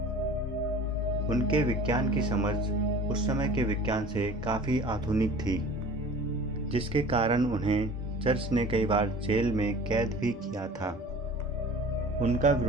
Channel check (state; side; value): normal; both; correlation 0.43